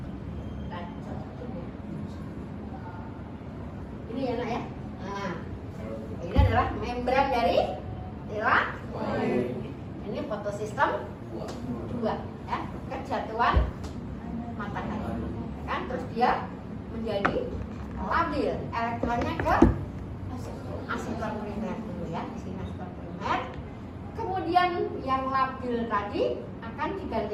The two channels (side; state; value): both; identical; correlation 1.00